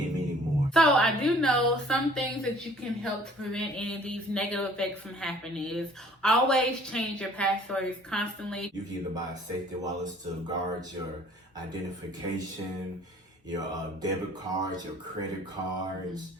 many more. So I do know some things that you can help to prevent any of these negative effects from happening is always change your passwords constantly. You can either buy safety wallets to guard your identification, your debit cards, your credit cards.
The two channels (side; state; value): both; normal; correlation 0.54